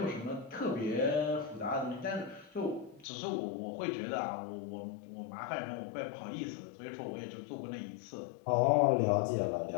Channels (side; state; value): right; drops out; at 3.1 s